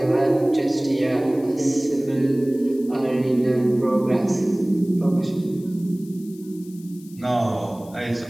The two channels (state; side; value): noise; left; hiss, 24 dB below the sound